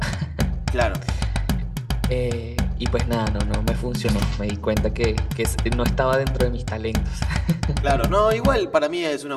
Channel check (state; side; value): identical; both; correlation 1.00